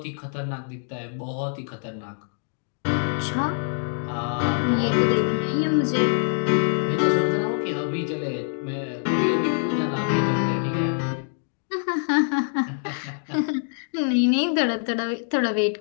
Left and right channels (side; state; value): right; silent; digital silence